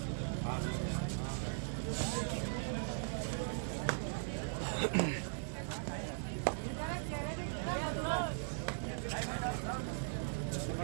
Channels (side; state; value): left; silent; digital silence